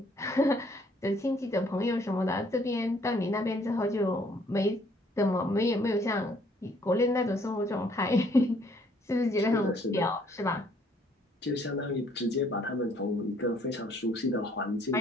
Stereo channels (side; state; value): both; normal; correlation 0.63